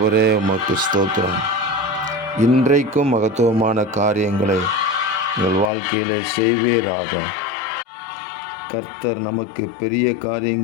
உமக்கு ஸ்தோத்திரம். இன்றைக்கும் மகத்துவமான காரியங்களை எங்கள் வாழ்க்கையிலே செய்வீராக. கர்த்தர் நமக்கு பெரிய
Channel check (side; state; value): right; drops out; at 5.7 s